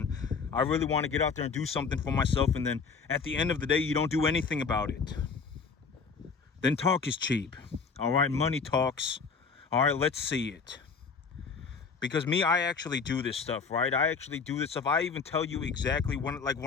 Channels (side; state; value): right; quieter; 5.3 dB